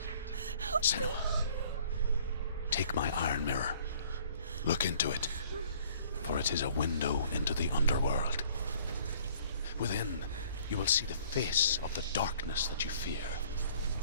Senua, take my iron mirror. Look into it, for it is a window into the underworld. Within, you will see the face of the darkness that you fear.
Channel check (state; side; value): inverted; both; correlation -0.55